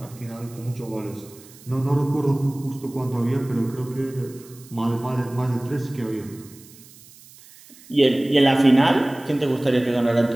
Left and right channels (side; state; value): right; noise; hiss, 23 dB below the sound